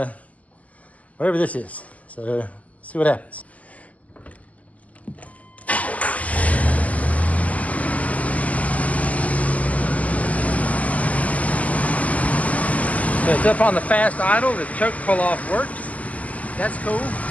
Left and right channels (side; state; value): right; late; 0.073 ms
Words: whatever this is. So let's see what happens. So it's up on the fast idle. The choke pull off works. That's cool.